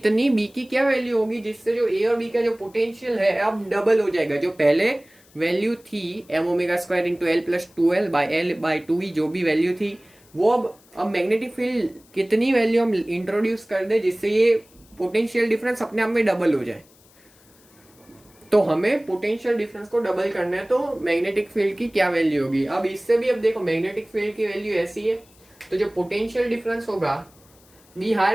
बी की क्या वैल्यू होगी जिससे जो ए और बी का जो पोटेंशियल है अब डबल हो जाएगा। जो पहले वैल्यू थी M omega square into L plus 2l by L by 2e, जो भी वैल्यू थी वो अब मैग्नेटिक फील्ड कितनी वैल्यू हम इंट्रोड्यूस कर दे जिससे ये पोटेंशियल डिफरेंस अपने आप में डबल हो जाए। तो हमें पोटेंशियल डिफरेंस को डबल करना है, तो मैग्नेटिक फील्ड की क्या वैल्यू होगी। अब इससे भी अब देखो मैग्नेटिक फील्ड की वैल्यू ऐसी है, तो जो पोटेंशियल डिफरेंस होगा बी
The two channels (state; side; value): noise; left; hiss, 29 dB below the sound